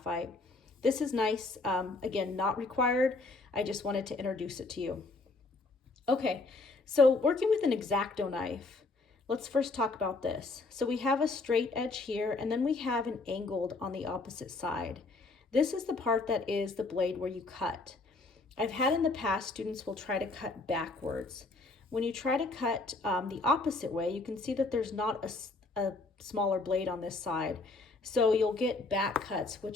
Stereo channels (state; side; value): quieter; right; 3.4 dB